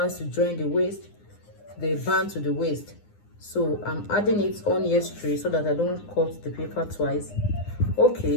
to join the waist, the band to the waist? So I'm adding it on here straight so that I don't cut the paper twice.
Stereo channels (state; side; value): late; right; 9.7 ms